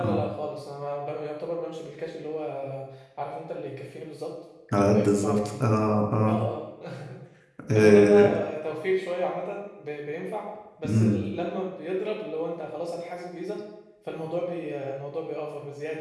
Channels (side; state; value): both; identical; correlation 1.00